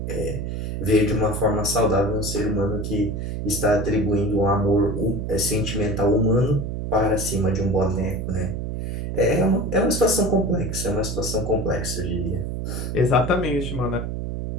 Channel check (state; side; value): noise; right; hum, 4 dB below the sound